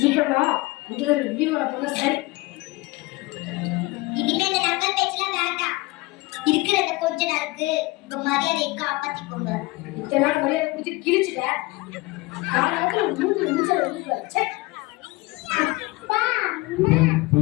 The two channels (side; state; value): right; quieter; 22.4 dB